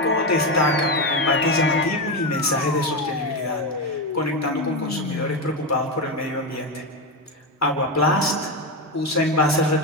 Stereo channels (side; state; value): both; normal; correlation 0.13